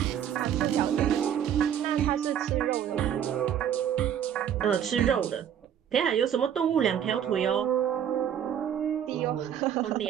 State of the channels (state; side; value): quieter; left; 9.4 dB